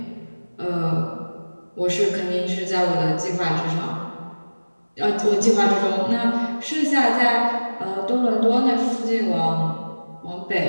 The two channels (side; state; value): both; inverted; correlation -1.00